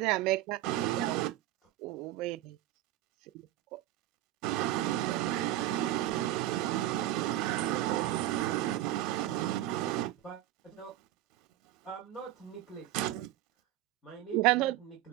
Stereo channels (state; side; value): quieter; left; 14.4 dB